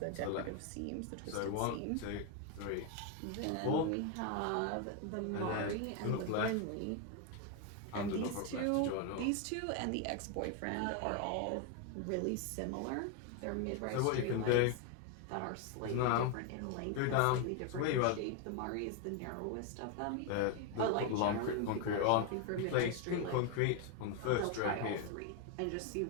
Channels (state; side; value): different; both; correlation 0.01